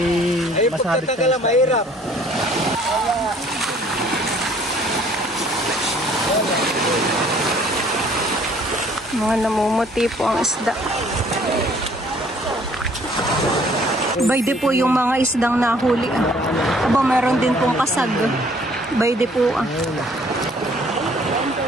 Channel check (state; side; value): normal; both; correlation 0.58